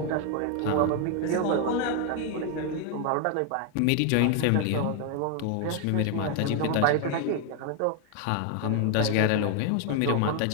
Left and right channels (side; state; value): both; different; correlation 0.00